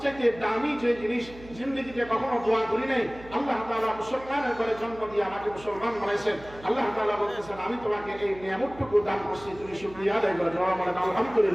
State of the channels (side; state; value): right; noise; hum, 19 dB below the sound